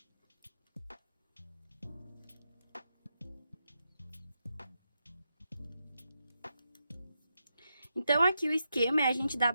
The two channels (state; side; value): inverted; both; correlation -0.85